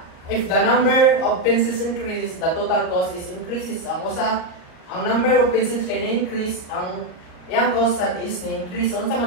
If the number of pencils increases, the total cost is increases. Ang number of pencils kay na-increase, ang iyang cost is na-increase. Unsa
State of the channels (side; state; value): right; late; 38 ms